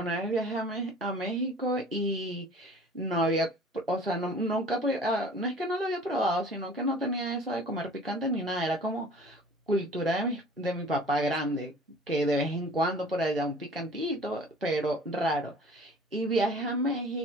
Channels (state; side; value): normal; both; correlation 0.47